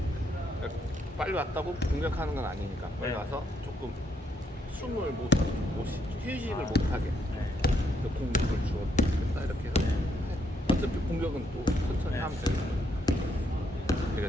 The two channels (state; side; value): normal; both; correlation 0.74